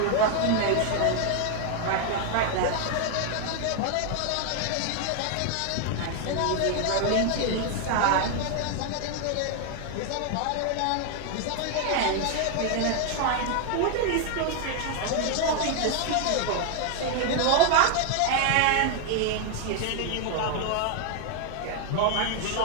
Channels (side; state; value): both; different; correlation 0.00